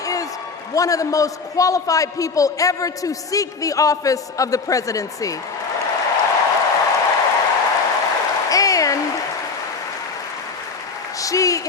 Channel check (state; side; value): quieter; right; 4.7 dB